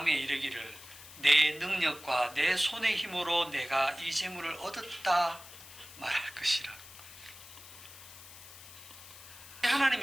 이르기를 내 능력과 내 손의 힘으로 내가 이 재물을 얻었다 말할 것이라.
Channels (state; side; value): noise; left; hiss, 17 dB below the sound